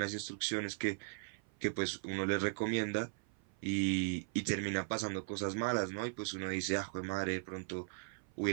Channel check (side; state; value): left; silent; 52 dB below the other